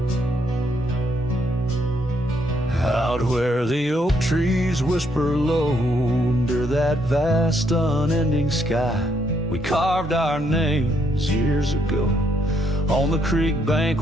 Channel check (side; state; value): both; normal; correlation 0.73